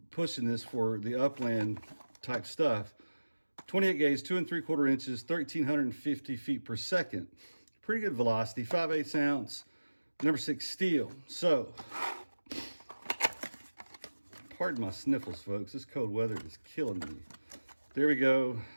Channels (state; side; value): inverted; both; correlation -1.00